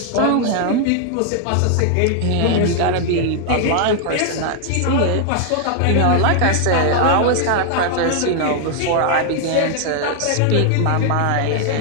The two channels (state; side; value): different; both; correlation 0.00